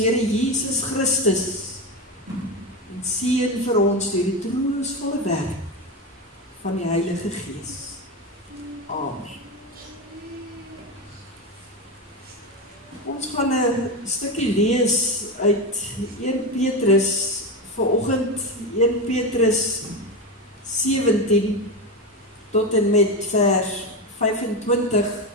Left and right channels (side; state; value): both; normal; correlation 0.17